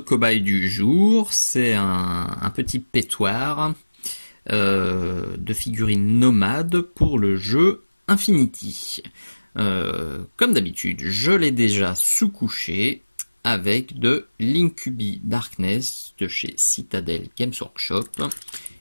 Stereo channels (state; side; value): inverted; both; correlation -1.00